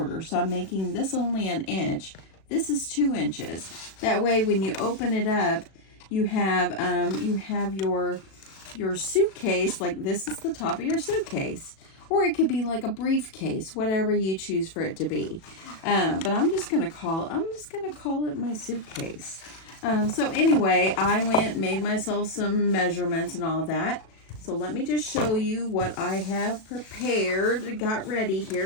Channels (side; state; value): right; late; 37 ms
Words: So I'm making this only 1 inch. This is 2 inches. That way, when you open it up, you have your suitcase, like this is the top of your suitcase. Or it could be like a briefcase, whatever you choose for it to be. But I'm just gonna call it my suitcase. So anyway, I made myself some measurements and all that. So let me just show you what I have prepared, got ready